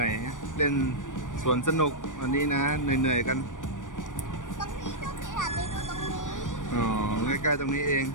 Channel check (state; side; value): late; right; 0.87 ms